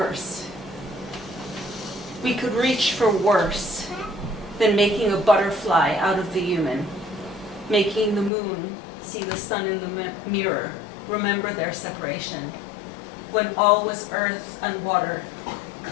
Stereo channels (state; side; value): drops out; right; at 8.3 s